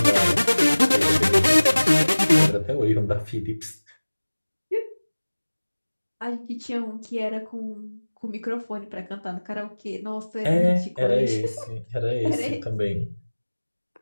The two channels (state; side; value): inverted; both; correlation -1.00